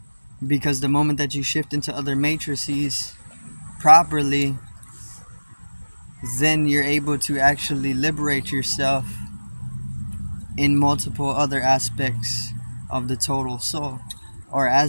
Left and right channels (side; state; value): both; inverted; correlation -1.00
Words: Because the moment that you shift into other matrices properly, then you're able to actually liberate yourself in multiple other aspects of the total soul. Or